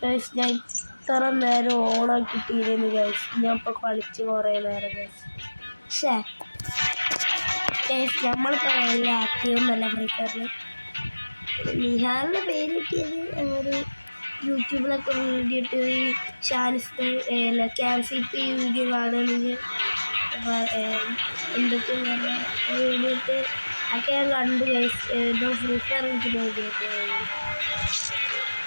ഗൈസ്. ഞാൻ ഇത്ര നേരം ഓണാക്കിയിട്ടിരുന്നു ഗൈസ്. ഞാൻ ഇപ്പോൾ കളിച്ച് കുറേ നേരം ഗൈസ്. പക്ഷേ ഗൈസ് നമ്മളിപ്പോൾ വലിയ ആക്റ്റീവൊന്നുമല്ല ഫ്രീ ഫയറിൽ. നിഹാലിൻ്റെ പേര് കിട്ടിയത് ഒരു യൂട്യൂബിലൊക്കെ വീഡിയോ ഇട്ട് ഈ ക്യാൻസിപ്പ് വീഡിയോ കാണുകയാണെങ്കിൽ എന്തൊക്കെ വീഡിയോ ഇട്ട് ഒക്കെ ഞാൻ കണ്ടു ഗൈസ്. ഏതോ ഫ്രീ ഫയർ എനിക്ക് വീഡിയോ ഇട്ട്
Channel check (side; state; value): both; inverted; correlation -1.00